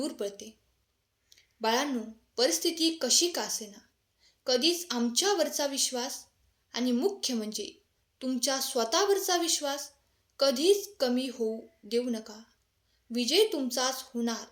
पडते. बाळांनो, परिस्थिती कशी का असेना, कधीच आमच्यावरचा विश्वास आणि मुख्य म्हणजे तुमच्या स्वतःवरचा विश्वास कधीच कमी होऊ देऊ नका. विजय तुमचाच होणार.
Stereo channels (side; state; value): both; identical; correlation 1.00